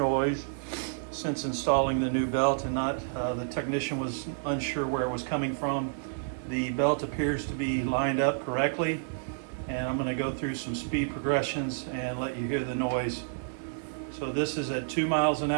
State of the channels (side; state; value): left; silent; 58 dB below the other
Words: since installing the new belt, and the technician was unsure where it was coming from. The belt appears to be lined up correctly, and I'm going to go through some speed progressions and let you hear the noise. So this is at 2 miles an